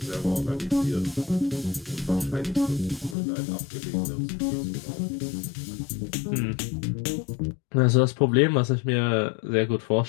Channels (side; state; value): right; drops out; at 3.2 s